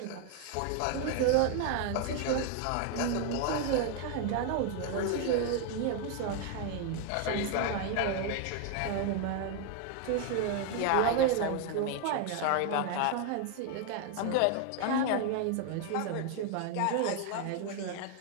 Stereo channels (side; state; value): both; different; correlation 0.00